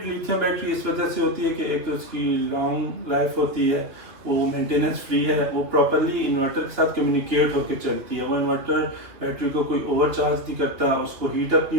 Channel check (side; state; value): left; late; 2.4 ms